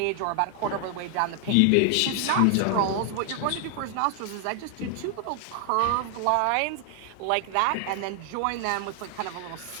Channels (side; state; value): both; different; correlation 0.00